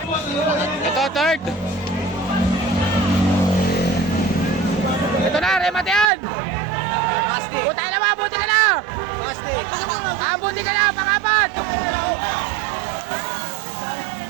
Ito, third. Ito na, remate yan. buti ka na! Buti ka na, pang-apat!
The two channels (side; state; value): left; drops out; at 6.1 s